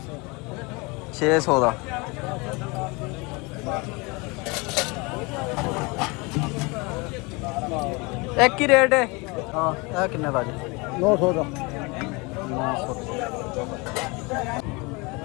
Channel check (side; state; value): right; quieter; 27.2 dB